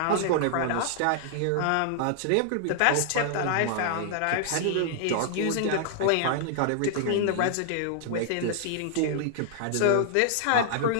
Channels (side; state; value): both; different; correlation -0.01